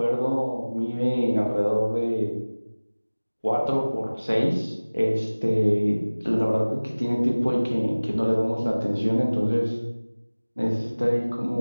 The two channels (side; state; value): both; inverted; correlation -1.00